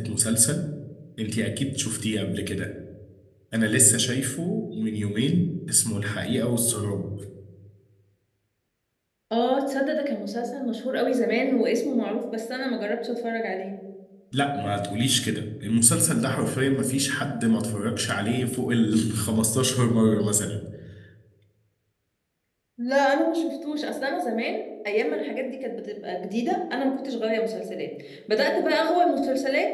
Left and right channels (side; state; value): both; identical; correlation 1.00